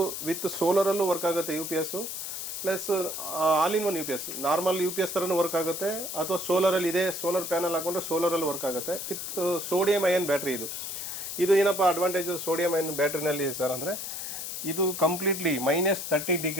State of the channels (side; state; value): left; noise; hiss, 6 dB below the sound